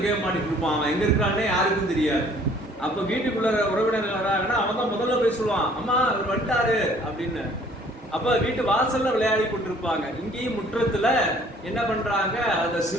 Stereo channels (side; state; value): both; normal; correlation 0.56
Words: கேம் ஆடிட்டு இருப்பான். அவன் எங்க இருக்கிறானே யாருக்கும் தெரியாது. அப்ப வீட்டுக்குள்ள உறவினர்கள் வராங்கன்னா அவன் தான் முதல்ல போய் சொல்லுவான், அம்மா அவர் வந்துட்டாரு அப்படின்னு. அப்ப வீட்டு வாசல்ல விளையாடி கொண்டிருப்பாங்க. இங்கேயும் முற்றத்துல என்ன பண்றாங்க, அந்த